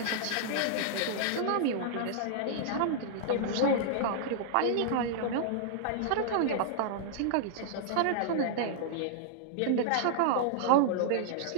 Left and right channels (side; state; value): both; different; correlation -0.01